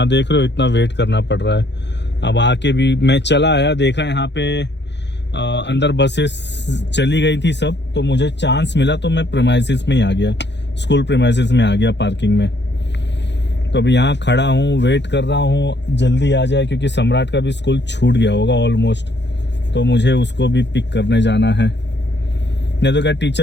देख रहे हो इतना वेट करना पड़ रहा है। अब आके भी मैं चला आया, देखा यहाँ पे अंदर बसेस चली गई थी सब, तो मुझे चांस मिला तो मैं प्रीमाइसिस में ही आ गया, स्कूल प्रीमाइसिस में आ गया पार्किंग में। तो अभी यहाँ खड़ा हूँ, वेट कर रहा हूँ जल्दी आ जाए, क्योंकि सम्राट का भी स्कूल छूट गया होगा ऑलमोस्ट, तो मुझे उसको भी पिक करने जाना है। नहीं तो क्या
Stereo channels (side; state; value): right; late; 0.51 ms